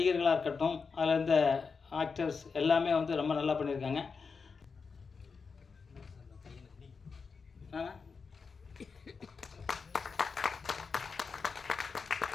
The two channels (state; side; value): quieter; right; 5.1 dB